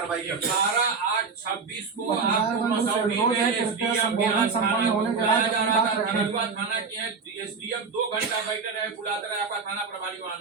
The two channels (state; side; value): quieter; left; 5.0 dB